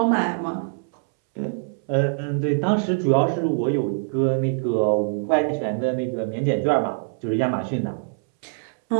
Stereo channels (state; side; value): silent; left; 63 dB below the other